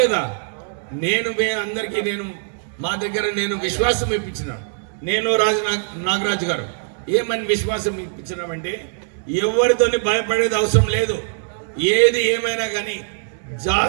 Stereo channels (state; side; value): silent; left; digital silence